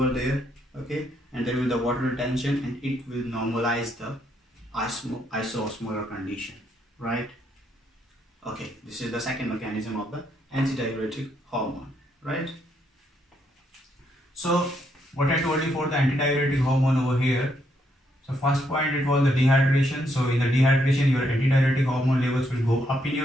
there, okay? And there will be the water retention, and it will normalize the isoosmolar condition, right? Okay, this is the second mechanism of the antidiuretic hormone, right? So what I told you for the antidiuretic hormone over here, so first point, it was the dehydration. So in the dehydration, your antidiuretic hormone levels will go up in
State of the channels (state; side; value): normal; both; correlation 0.75